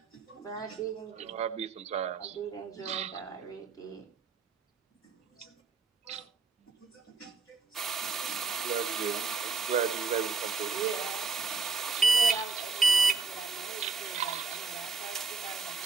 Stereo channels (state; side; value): quieter; left; 4.5 dB